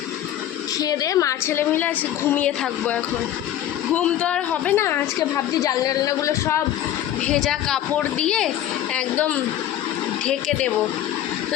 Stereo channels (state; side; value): quieter; right; 11.9 dB